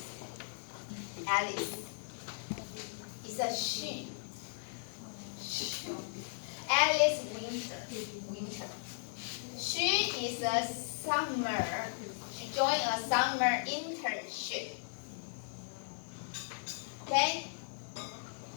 Alice. It's a she. Alice Winter. She is a summer. She joined a summer internship. Okay?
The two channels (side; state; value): right; silent; digital silence